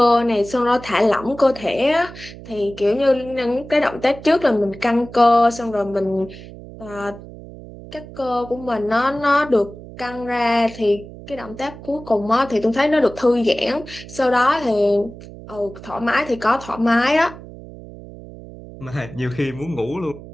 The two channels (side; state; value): right; noise; hum, 16 dB below the sound